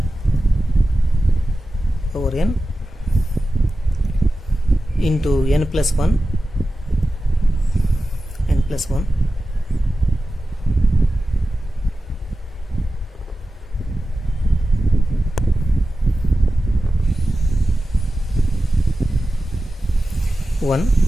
into n plus 1 1.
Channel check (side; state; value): both; normal; correlation 0.94